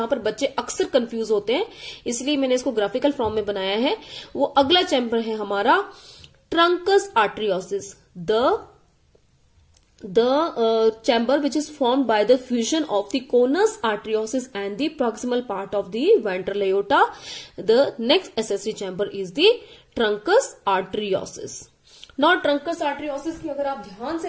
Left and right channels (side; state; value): both; identical; correlation 1.00